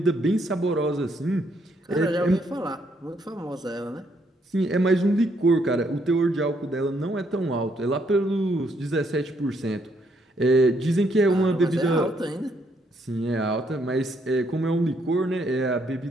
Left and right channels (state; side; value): normal; both; correlation 0.72